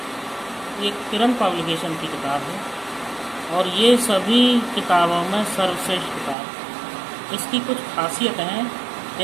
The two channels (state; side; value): drops out; left; at 6.4 s